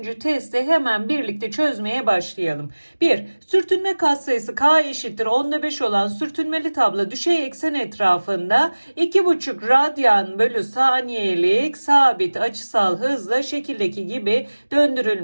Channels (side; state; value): both; inverted; correlation -1.00